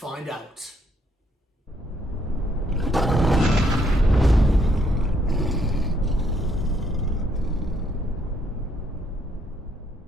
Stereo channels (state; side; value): normal; both; correlation 0.71